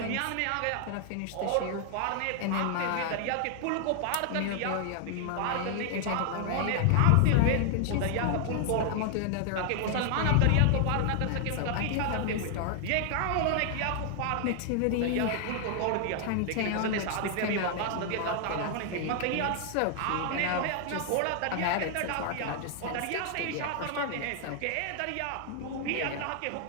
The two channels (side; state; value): both; different; correlation 0.00